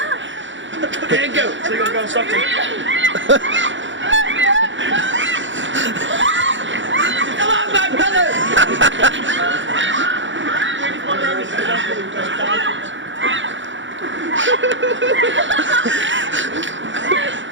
There you go. So you're gonna go and Stockton. Come on, my brother!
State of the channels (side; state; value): left; late; 0.55 ms